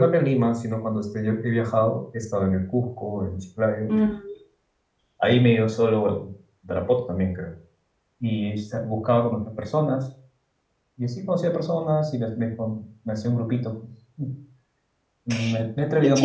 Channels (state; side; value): identical; both; correlation 1.00